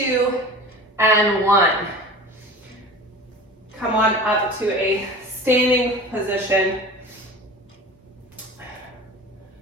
and 1. Come on up to a standing position.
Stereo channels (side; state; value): both; normal; correlation 0.37